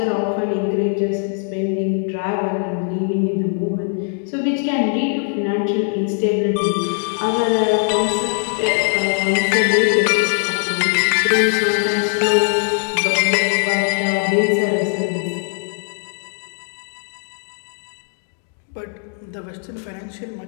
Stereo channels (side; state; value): right; silent; 55 dB below the other